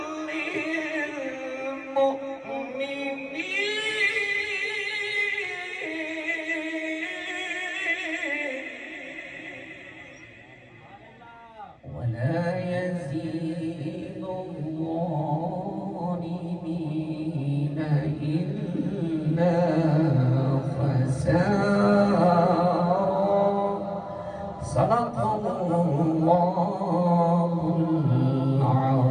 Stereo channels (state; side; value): identical; both; correlation 1.00